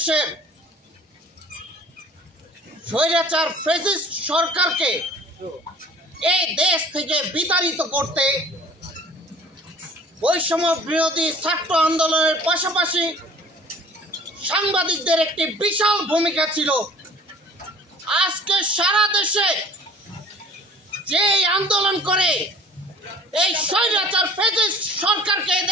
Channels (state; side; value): normal; both; correlation 0.48